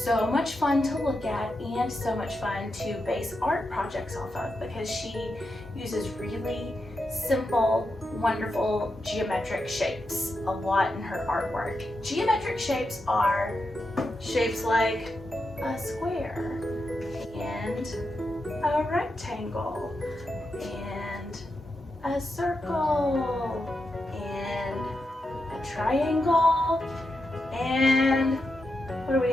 so much fun to look at and so much fun to base art projects off of because she uses really simple, wonderful geometric shapes a lot in her artwork. Geometric shapes are shapes like a square and a rectangle and a circle and a triangle. And what do we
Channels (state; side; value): normal; both; correlation 0.86